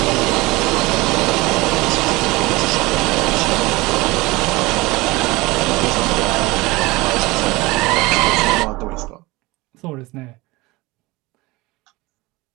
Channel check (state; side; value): quieter; left; 22.0 dB